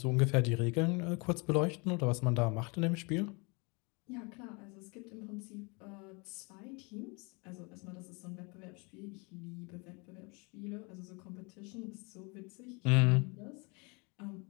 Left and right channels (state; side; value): quieter; right; 30.3 dB